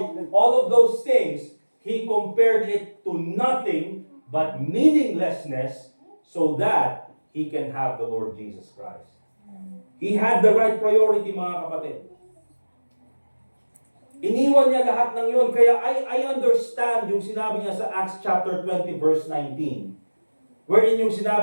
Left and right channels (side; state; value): both; inverted; correlation -1.00